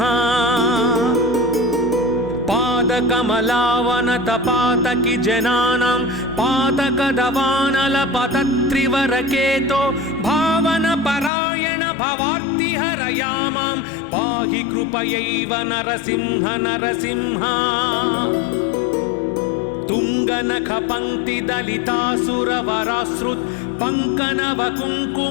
पादकमलावनत पातकि जनानां पातकदवानल पतत्रिवरकेतो भावन परायण भवार्ति हरयामां पाहि कृपयैव नरसिंह नरसिंह तुंगनख पंक्ति दलितासुरवराश्रुत पंकनव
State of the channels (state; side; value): drops out; right; at 11.3 s